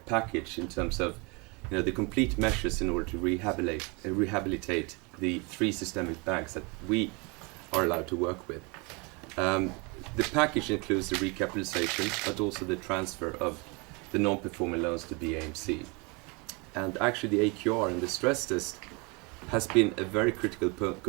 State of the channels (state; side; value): quieter; left; 29.6 dB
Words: package in terms of, you know, the complete measures in order to rehabilitate the 3 systemic banks that we are allowed to work with. The package includes the recapitalization, but also the transfer of the non-performing loans to BAMC. And actually the AQR and the stress test has been a very critical